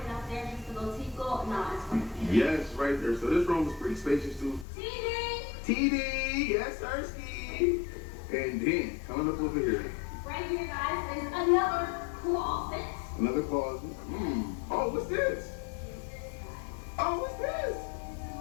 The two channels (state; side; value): drops out; right; at 4.7 s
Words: Yes, right there. So this room is pretty spacious too. TD, yes, Sirski. And then coming up over here. Right here, guys, is another closet. Another closet. Oh, what's this? Oh, what's this?